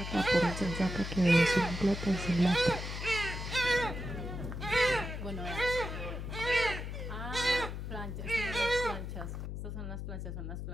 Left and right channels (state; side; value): noise; left; hum, 6 dB below the sound